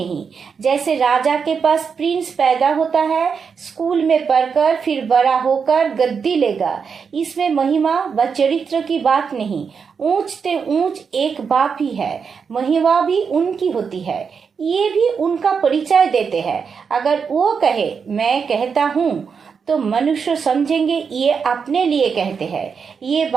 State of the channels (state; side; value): quieter; left; 6.0 dB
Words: जैसे राजा के पास प्रिंस पैदा होता है, स्कूल में पढ़कर फिर बड़ा होकर गद्दी लेगा, इसमें महिमा व चरित्र की बात नहीं। ऊंच ते ऊंच एक बाप ही है, महिमा भी उनकी होती है, ये भी उनका परिचय देते हैं। अगर वो कहे मैं कहता हूँ तो मनुष्य समझेंगे ये अपने लिए कहते हैं। ये